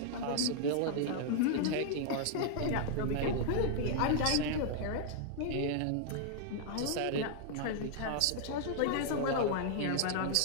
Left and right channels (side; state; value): both; different; correlation -0.01